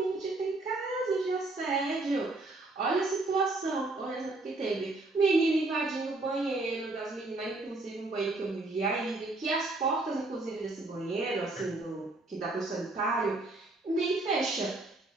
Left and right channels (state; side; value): quieter; left; 3.0 dB